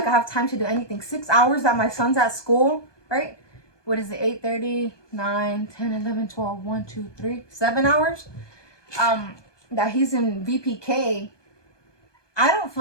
I have time to do anything. 6 hours that my son's at school, right? What is it? 8:30, 9, 10, 11, 12, 1, 2, 3, 7 hours. That he's in VPK. I don't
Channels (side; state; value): right; late; 1.2 ms